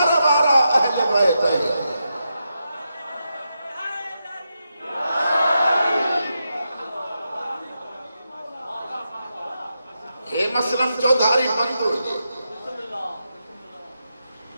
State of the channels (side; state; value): both; inverted; correlation -0.86